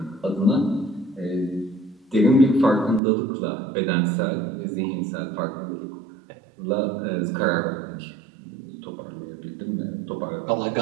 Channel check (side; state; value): left; drops out; at 3.0 s